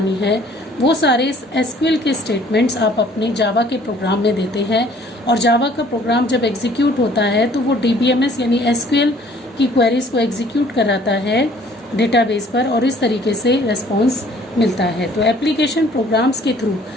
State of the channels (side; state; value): both; normal; correlation 0.56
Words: है, वो सारे SQL के स्टेटमेंट्स आप अपने जावा के प्रोग्राम में देते हैं। और जावा का प्रोग्राम जब एग्जीक्यूट होता है तो वो DBMS यानी SQL की क्वेरीज को एग्जीक्यूट कराता है डेटाबेस पर और इस तरीके से रेस्पॉन्स मिलता है। तो एप्लीकेशन प्रोग्राम्स के थ्रू